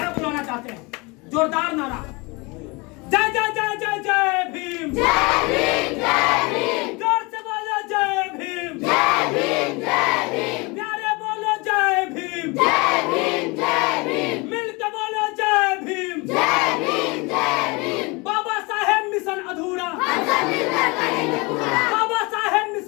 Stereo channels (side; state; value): right; quieter; 26.8 dB